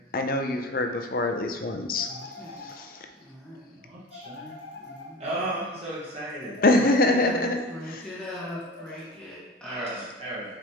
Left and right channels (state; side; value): normal; both; correlation 0.33